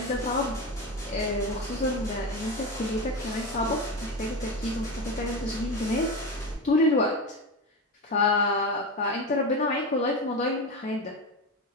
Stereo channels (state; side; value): normal; both; correlation 0.20